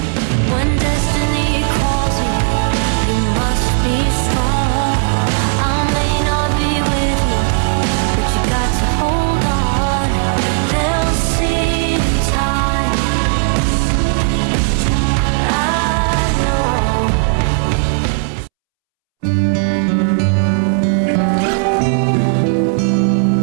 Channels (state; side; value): silent; left; 70 dB below the other